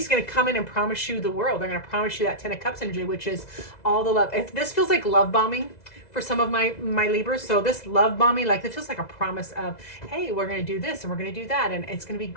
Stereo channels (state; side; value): late; right; 2.0 ms